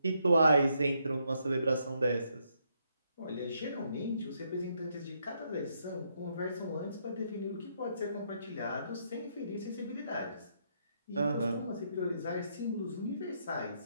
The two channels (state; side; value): inverted; both; correlation -0.76